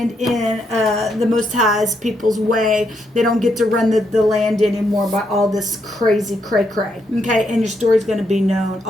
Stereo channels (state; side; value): normal; both; correlation 0.78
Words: in the Most High's people's way. They don't get to run the land anymore by all this crazy cray-cray. Okay, and your story's gonna be known